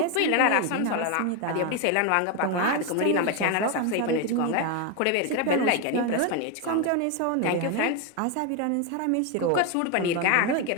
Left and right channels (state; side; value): different; both; correlation 0.02